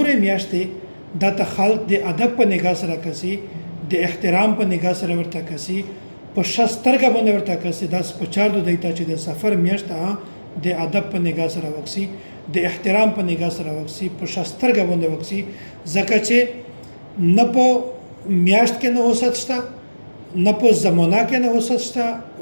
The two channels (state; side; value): inverted; both; correlation -1.00